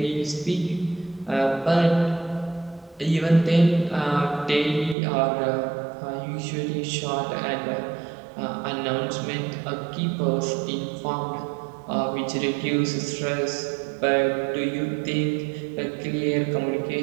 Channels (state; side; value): drops out; left; at 5.0 s